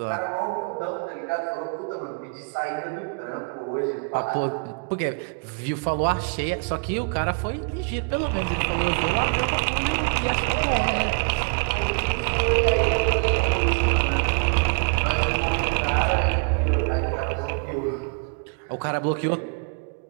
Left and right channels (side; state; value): left; quieter; 39.9 dB